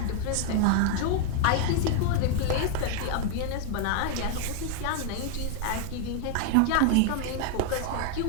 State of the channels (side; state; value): both; different; correlation 0.00